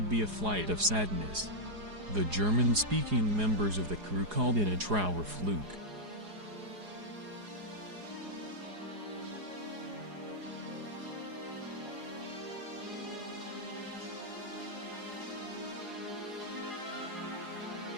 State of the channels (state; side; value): late; left; 4.8 ms